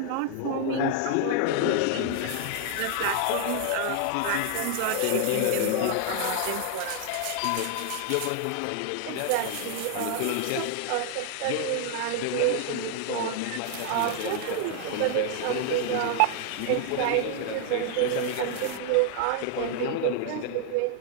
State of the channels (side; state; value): both; different; correlation 0.00